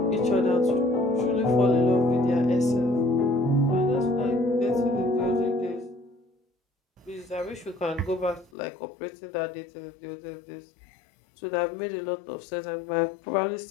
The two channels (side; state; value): right; drops out; at 8.5 s